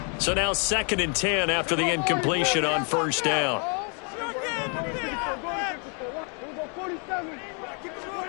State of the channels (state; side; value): quieter; right; 38.4 dB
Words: So now 2nd and 10 after the incompletion on 1st down.